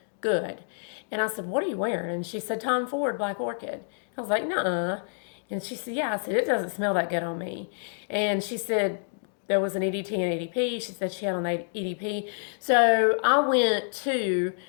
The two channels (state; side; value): silent; right; digital silence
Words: good. And I said, "What are you wearing?" And she said, "Tom Ford Black Orchid." I was like, "Nuh-uh." And she said, "Yeah." I said, "It doesn't smell that good on me." And she said there was an EDT and EDP. She said she had on the EDP. So I went to,